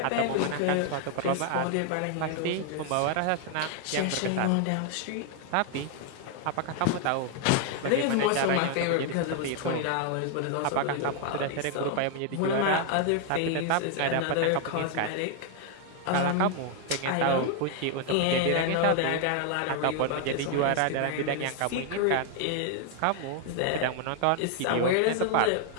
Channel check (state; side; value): different; both; correlation 0.00